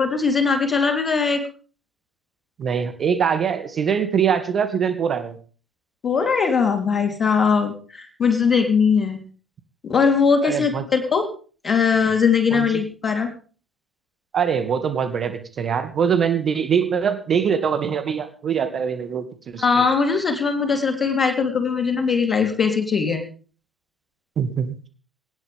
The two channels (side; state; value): both; normal; correlation 0.66